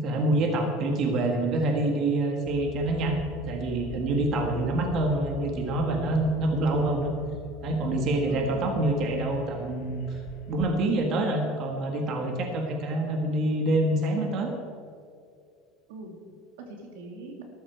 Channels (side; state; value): both; normal; correlation 0.47